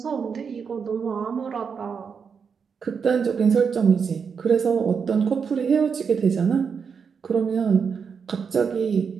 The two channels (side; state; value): left; quieter; 6.2 dB